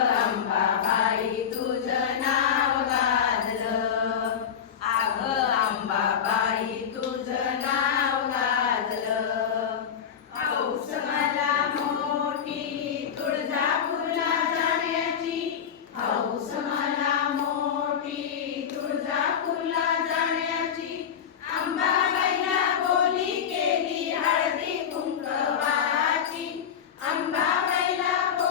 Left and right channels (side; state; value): right; quieter; 8.0 dB